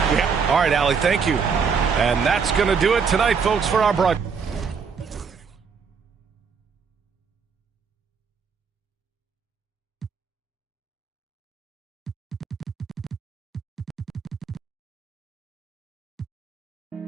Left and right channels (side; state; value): left; quieter; 5.9 dB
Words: Yeah. All right, Allie, thank you. And that's going to do it tonight, folks, for our broadcast.